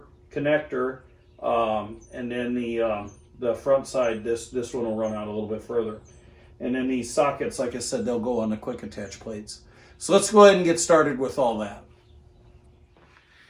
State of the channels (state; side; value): identical; both; correlation 1.00